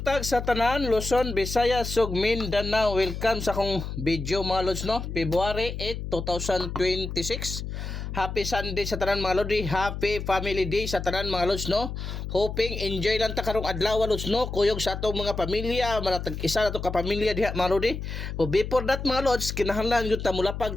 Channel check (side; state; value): left; noise; hum, 6 dB below the sound